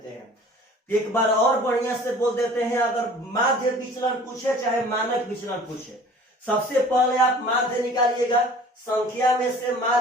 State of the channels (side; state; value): both; normal; correlation 0.47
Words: हैं। एक बार और बढ़िया से बोल देते हैं, अगर माध्य विचलन पूछे चाहे मानक विचलन पूछे, सबसे पहले आप माध्य निकालिएगा, संख्या में से